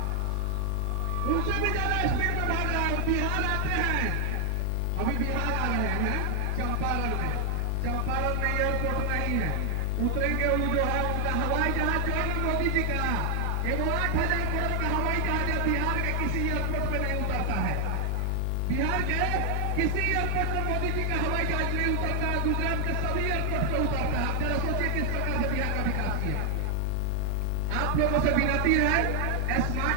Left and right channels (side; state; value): both; different; correlation 0.00